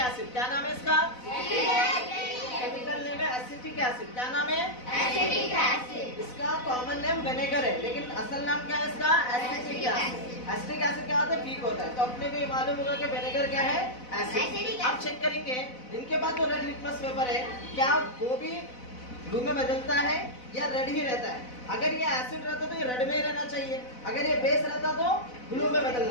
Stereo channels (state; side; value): late; right; 4.0 ms